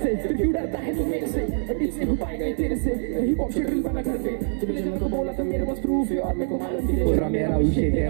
फिर क्यों डरता है तू मेरे से टीच नहीं हो पाएगा तेरे से हिप हॉप रील बना घर पे तुझे जब तो बोला तो मेरे पास प्रूफ है और मेरे को मालूम थी तेरा मेरा विषय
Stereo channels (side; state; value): left; silent; digital silence